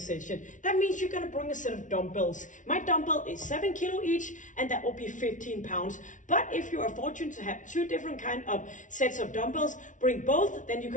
That means you're gonna bring a set of dumbbells. My dumbbell is 7 kilo each and that will be 15 pounds. But if you are fortunate to have two different kind of sets of dumbbells, bring both, then you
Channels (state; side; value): late; right; 0.37 ms